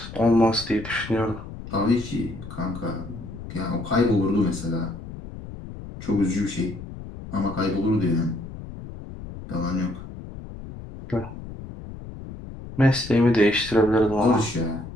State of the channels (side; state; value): left; noise; rumble, 12 dB below the sound